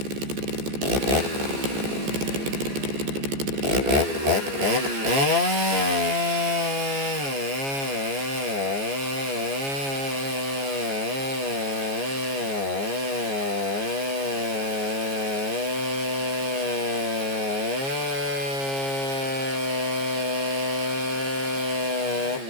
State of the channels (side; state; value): left; late; 14 ms